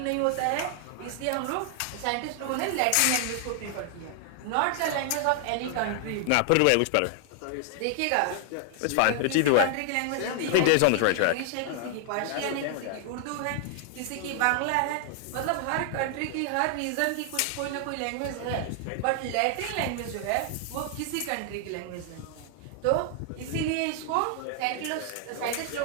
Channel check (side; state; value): both; different; correlation 0.00